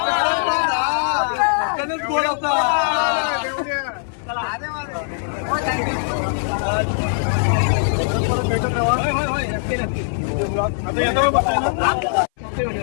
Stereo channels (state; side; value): silent; right; 59 dB below the other